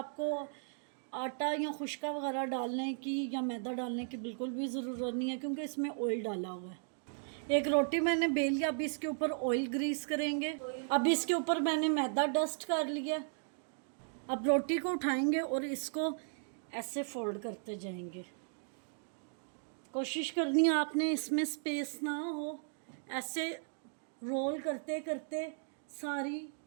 आटा या खुश्का वगैरह डालने की या मैदा डालने की बिल्कुल भी ज़रूरत नहीं है, क्योंकि इसमें ऑयल डाला हुआ है। एक रोटी मैंने बेल लिया। अब इसके ऊपर ऑयल ग्रीस करेंगे। अब इसके ऊपर मैंने मैदा डस्ट कर लिया। अब रोटी को उठाएंगे और इसको ऐसे फोल्ड करते जाएंगे। कोशिश करनी है आपने इसमें स्पेस ना हो। ऐसे रोल करते करते सारी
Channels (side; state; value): left; silent; digital silence